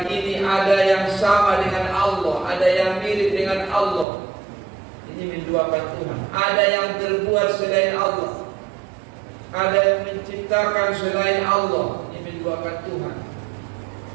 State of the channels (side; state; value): left; drops out; at 4.0 s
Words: ada yang sama dengan Allah, ada yang mirip dengan Allah. Ini menduakan Tuhan. Ada yang terbuat selain Allah, ada yang menciptakan selain Allah. Ini menduakan Tuhan.